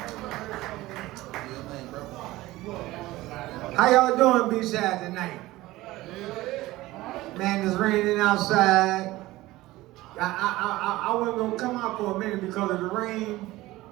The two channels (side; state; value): left; quieter; 18.0 dB